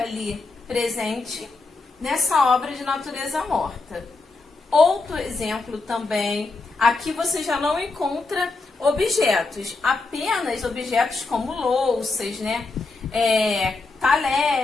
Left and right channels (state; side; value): quieter; right; 3.7 dB